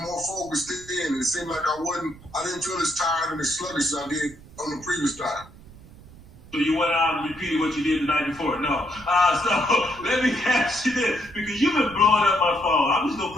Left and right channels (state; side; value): noise; right; rumble, 20 dB below the sound